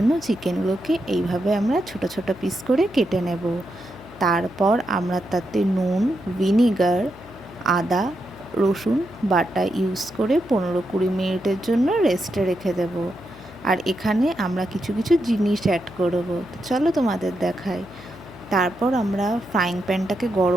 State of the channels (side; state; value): left; noise; hum, 19 dB below the sound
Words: চিকেনগুলোকে এইভাবে আমরা ছোট ছোট পিস করে কেটে নেব। তারপর আমরা তাতে নুন, ভিনিগার, আদা, রসুন বাটা ইউজ করে 15-20 মিনিটের জন্য রেস্টে রেখে দেব। আর এখানে আমরা কিছু কিছু জিনিস অ্যাড করব, চলো তোমাদের দেখাই। তারপর আমরা ফ্রাইং প্যানটাকে